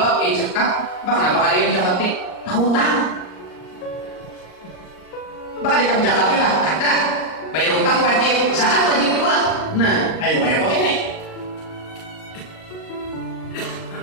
zakat, kenapa kalian zakati? Hutang. Bakal di zakati lah, ada. Bayar utang wajib, zakat wajib juga. Nah, ayo bayar pakai ini.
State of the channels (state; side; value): late; right; 38 ms